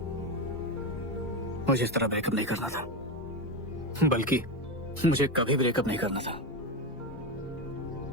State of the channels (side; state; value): both; normal; correlation 0.15